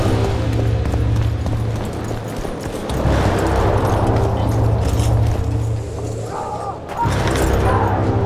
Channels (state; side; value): identical; both; correlation 1.00